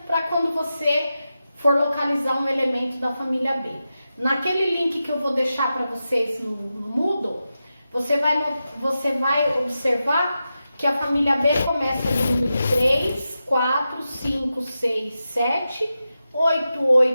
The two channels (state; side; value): inverted; both; correlation -0.91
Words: para quando você for localizar um elemento da família B. Naquele link que eu vou deixar para vocês no Moodle, você vai observar que a família B começa no número 3, 4, 5, 6, 7, 8,